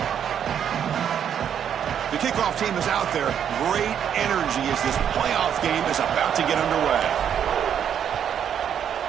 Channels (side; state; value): left; quieter; 8.8 dB